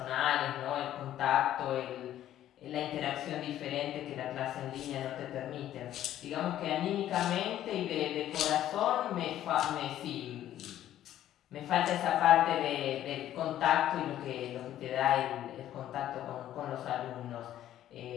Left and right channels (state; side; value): quieter; right; 12.2 dB